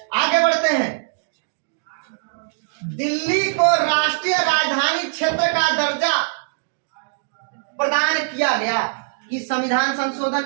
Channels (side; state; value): left; silent; digital silence